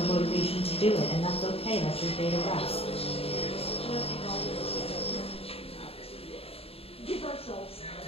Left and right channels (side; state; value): right; late; 0.28 ms